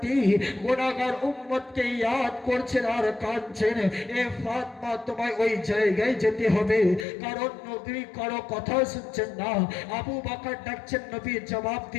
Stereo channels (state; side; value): drops out; right; at 7.1 s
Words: গুনাহগার উম্মতকে ইয়াদ করছেন আর কাঁদছেন। এ ফাতিমা, তোমায় ওই জায়গায় যেতে হবে, কারণ নবী কারো কথা শুনছেন না। আবু বকর ডাকছেন, নবী জবাব